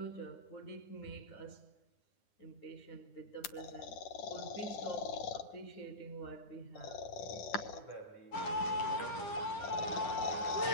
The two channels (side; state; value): right; late; 9.9 ms